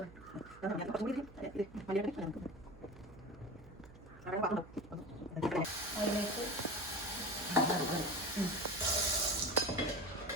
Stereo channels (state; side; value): noise; right; hum, 20 dB below the sound